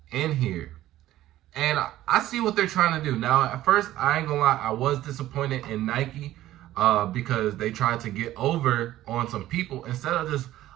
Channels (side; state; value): left; quieter; 14.4 dB